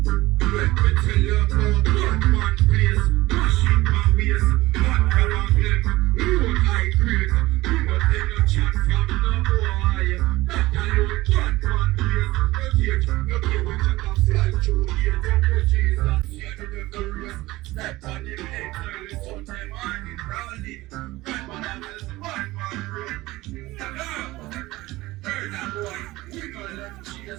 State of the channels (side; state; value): left; quieter; 18.8 dB